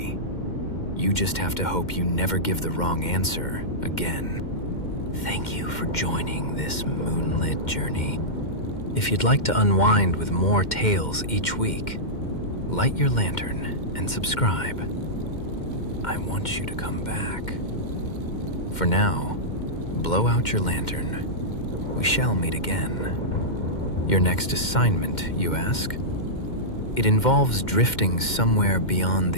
You just have to hope you never give the wrong answer again. Thank you for joining this moonlit journey. If you'd like to unwind with more tales each week, light your lantern and subscribe. I want you to come back. For now, blow out your lantern. We shall meet again. Your next assignment, you ask? It involves drifting somewhere beyond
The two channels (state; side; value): late; right; 2.1 ms